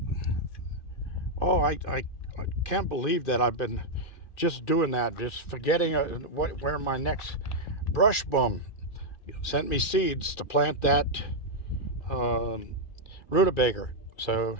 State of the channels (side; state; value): right; late; 2.3 ms